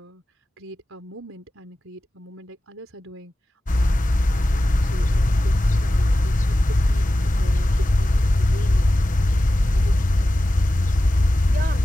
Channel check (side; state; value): both; normal; correlation 0.94